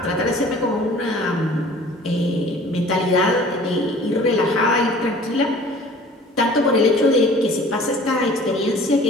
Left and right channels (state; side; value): normal; both; correlation 0.48